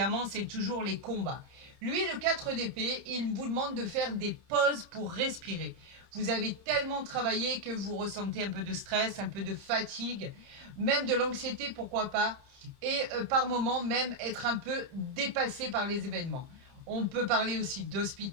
c'est toujours les combats. Lui, le 4 d'épée, il vous demande de faire des pauses pour respirer. Vous avez tellement travaillé que vous ressentez un peu de stress, un peu de fatigue, même de l'anxiété, pourquoi pas, et par moments même être un peu dépassé par les événements. On peut parler aussi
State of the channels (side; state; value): left; late; 30 ms